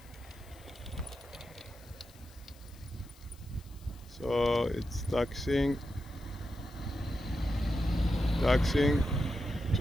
So it's taxiing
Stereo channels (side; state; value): left; noise; hiss, 25 dB below the sound